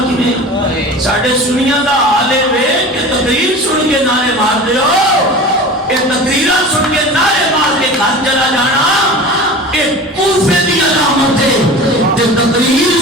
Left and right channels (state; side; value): normal; both; correlation 0.35